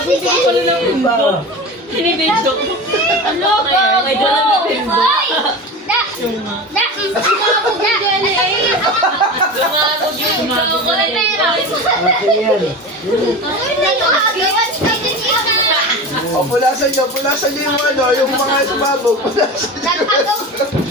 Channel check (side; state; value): both; normal; correlation 0.29